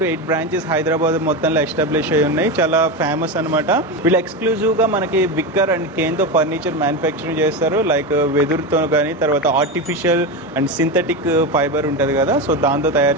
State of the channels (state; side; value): normal; both; correlation 0.17